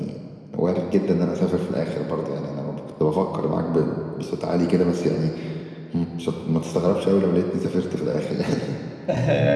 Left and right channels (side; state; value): both; identical; correlation 1.00